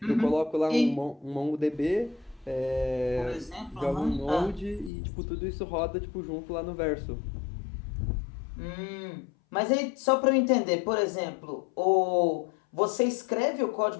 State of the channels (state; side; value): drops out; right; at 4.9 s